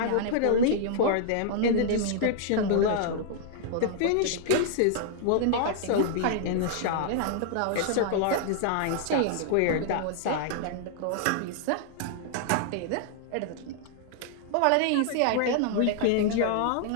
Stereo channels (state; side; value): different; both; correlation -0.01